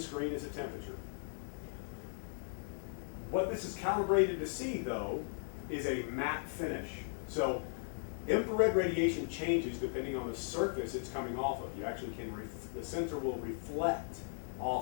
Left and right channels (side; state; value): right; silent; digital silence